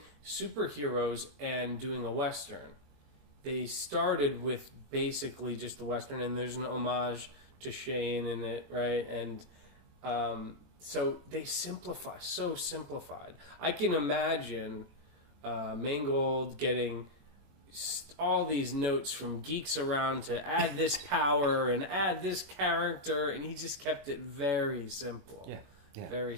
superheroes and doing a Western, they started with basically just the Western, and there's an homage to Shane in it, right? And so they simplified. I can imagine Mangold getting all these notes from geeks around to add this power and add this character, and he just kept it very simple. Yeah. Very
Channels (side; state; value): left; late; 21 ms